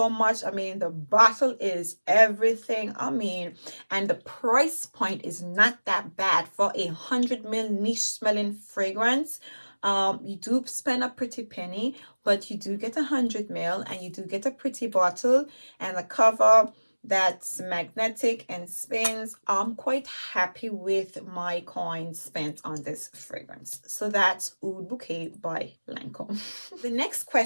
much. I mean, the bottle is everything. I mean, and the price point is not that bad for a 100 ml niche smelling fragrance. You do spend a pretty penny, but you do get 100 ml, and you do get a pretty bottle and a cover that's magnetic and spins. I'm quite happy with my coins spent on this fragrance. So that's Oud Bouquet by Lancome. The next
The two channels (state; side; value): inverted; both; correlation -1.00